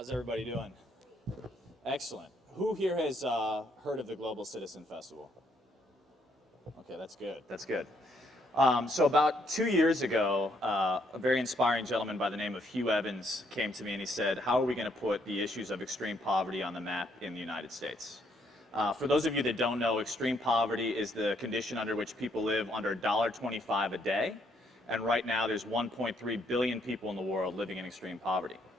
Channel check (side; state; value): both; normal; correlation 0.71